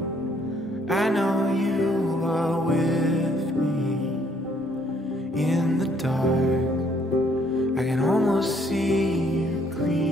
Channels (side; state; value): both; normal; correlation 0.66